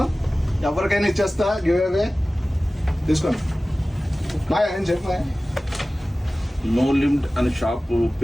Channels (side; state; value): both; normal; correlation 0.97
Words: ఎవరికైనా ఇచ్చేస్తా గివ్ అవే. తీసుకోండి. బాయ్ ఏం చెప్పా. నో లిమిట్ అనే షాప్